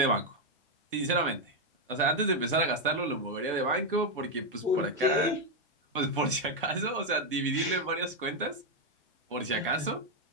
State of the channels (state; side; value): normal; both; correlation 0.03